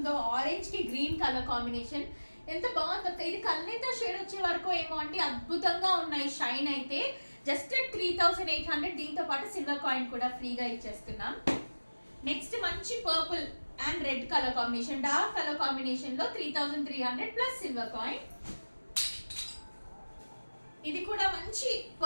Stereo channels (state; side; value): inverted; both; correlation -1.00